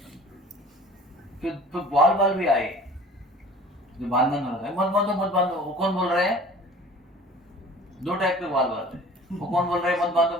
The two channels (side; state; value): both; normal; correlation 0.45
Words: फिर बाल भी आए जो बांधना होता है, मत बांधो। वो कौन बोल रहे हैं? दो टाइप के बाल है। वो कौन बोल रहे हैं मत